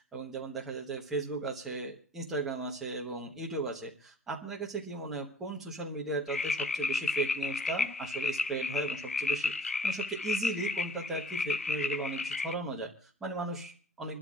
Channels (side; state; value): both; normal; correlation 0.46